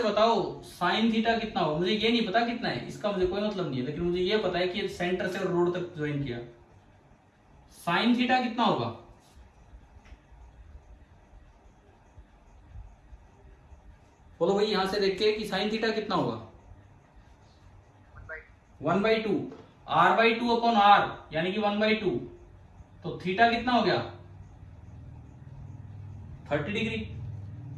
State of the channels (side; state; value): both; identical; correlation 1.00